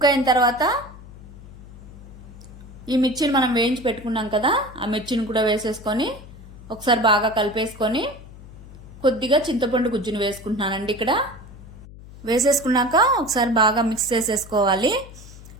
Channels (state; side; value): noise; left; hum, 17 dB below the sound